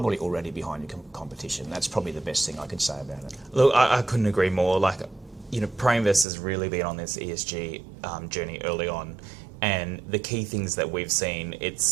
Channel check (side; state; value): left; drops out; at 6.2 s